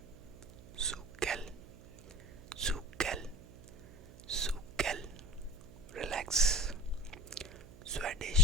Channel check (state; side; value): noise; right; hum, 18 dB below the sound